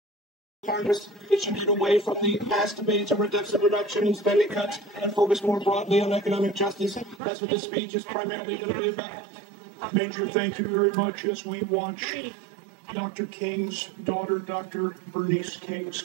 Congress it should get away from the past debates over deficit reduction and spending cuts and focus more broadly on economic justice. That's what this speech is primarily going to be about. Major, thank you very much. As we watch Dr. King's daughter, Dr. Bernice King,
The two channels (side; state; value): left; drops out; at 7.2 s